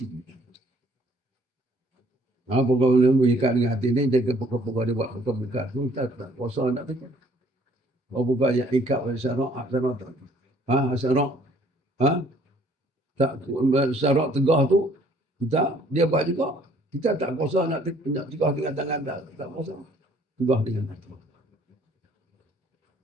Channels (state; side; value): normal; both; correlation 0.60